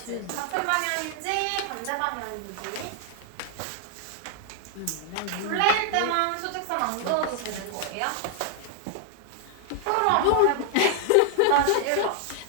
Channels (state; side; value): different; both; correlation 0.00